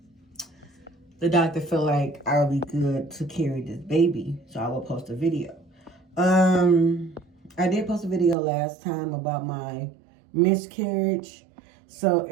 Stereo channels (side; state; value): left; drops out; at 8.3 s